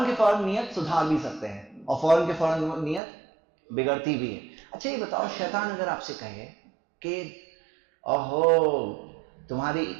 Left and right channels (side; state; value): left; drops out; at 3.0 s